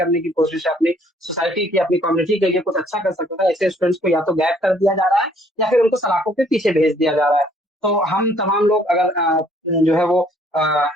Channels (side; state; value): both; normal; correlation 0.62